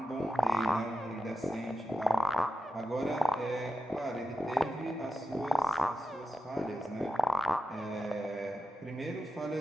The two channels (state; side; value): normal; both; correlation 0.91